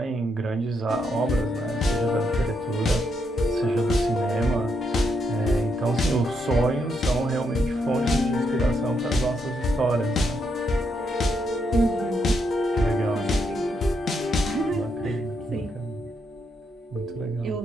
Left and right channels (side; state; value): both; normal; correlation 0.78